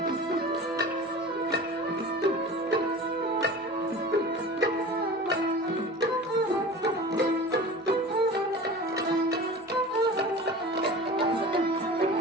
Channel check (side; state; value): both; normal; correlation 0.37